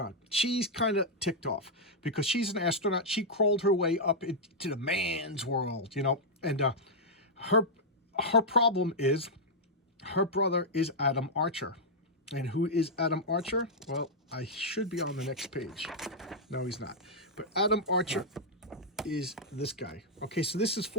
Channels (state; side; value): normal; both; correlation -0.05